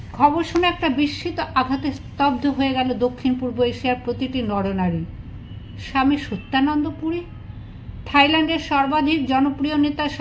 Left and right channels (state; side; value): identical; both; correlation 1.00